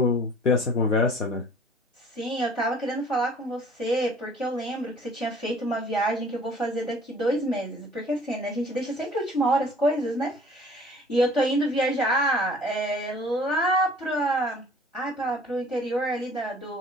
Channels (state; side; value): normal; both; correlation 0.52